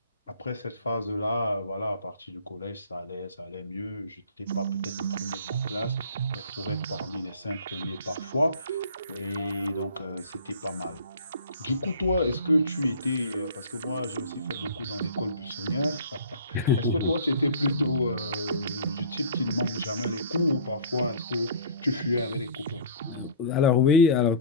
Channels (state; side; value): inverted; both; correlation -0.42